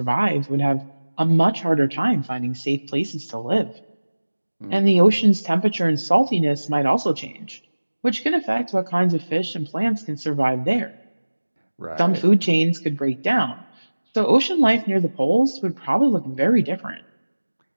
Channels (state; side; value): inverted; both; correlation -1.00